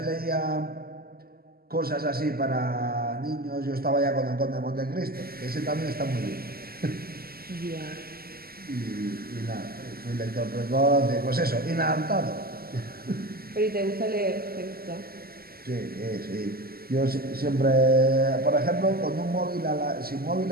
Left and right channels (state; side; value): late; left; 0.44 ms